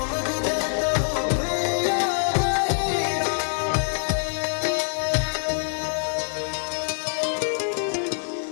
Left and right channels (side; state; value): right; silent; digital silence